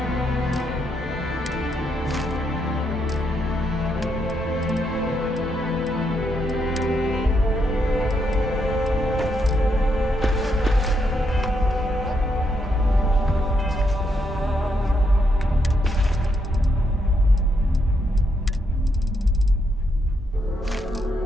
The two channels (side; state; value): both; normal; correlation 0.78